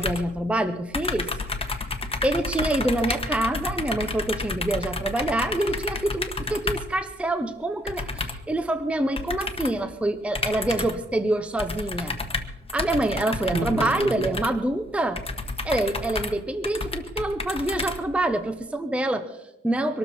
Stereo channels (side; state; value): both; normal; correlation 0.70